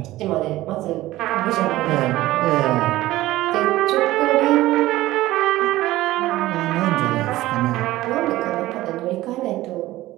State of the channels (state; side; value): quieter; left; 16.6 dB